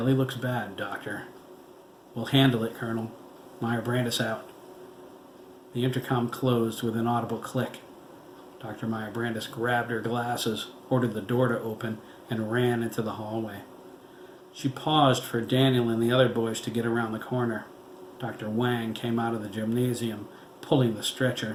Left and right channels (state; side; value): identical; both; correlation 1.00